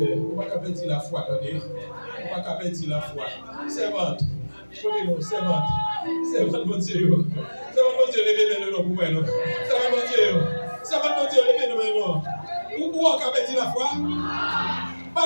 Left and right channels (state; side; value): inverted; both; correlation -1.00